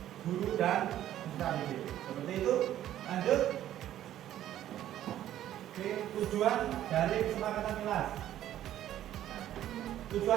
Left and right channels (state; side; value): quieter; left; 12.2 dB